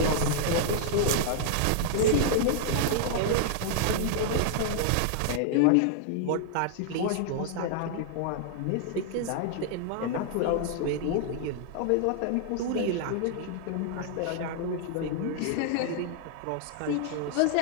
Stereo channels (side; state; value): both; different; correlation -0.01